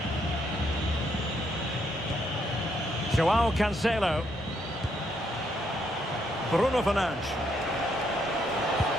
Joao Cancelo. Bruno Fernandes.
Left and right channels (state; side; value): normal; both; correlation 0.74